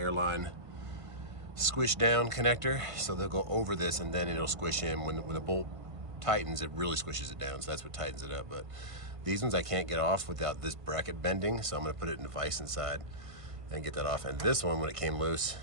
squish down connector, so they'll go over this and then it'll squish in. When the bolt tightens, it really squishes it down, so that's what tightens it up. But these ones I can't get off without this bracket bending, so I'm going to put it in a vise inside and get that off. And this one, when it came loose,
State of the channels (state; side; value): late; left; 1.5 ms